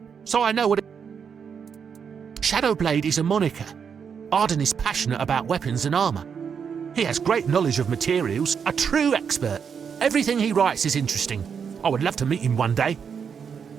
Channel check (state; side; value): quieter; left; 6.8 dB